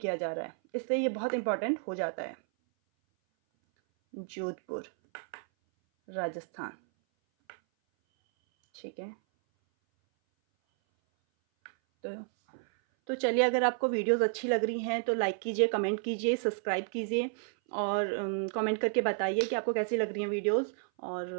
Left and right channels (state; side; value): silent; left; 57 dB below the other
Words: जा रहा है, इसलिए ये बहुत इम्पोर्टेंट हो जाता है। जोधपुर, राजस्थान, ठीक है। तो चलिए, अगर आपको वीडियोस अच्छी लग रही हैं तो लाइक कीजिए, कमेंट कीजिए, सब्सक्राइब कीजिए और कमेंट करके बताइए कि आपको कैसी लग रही हैं वीडियोस।